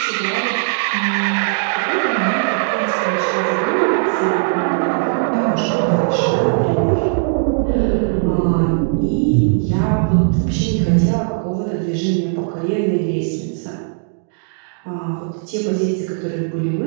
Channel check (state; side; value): silent; left; digital silence